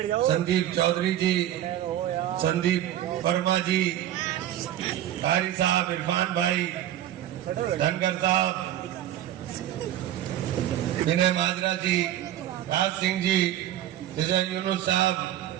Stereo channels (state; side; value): quieter; left; 12.3 dB